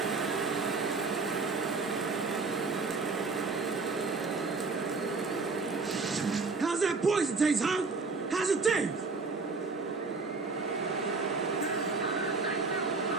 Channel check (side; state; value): left; quieter; 4.1 dB